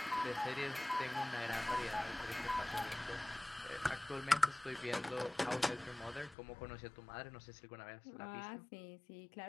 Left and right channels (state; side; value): drops out; right; at 6.4 s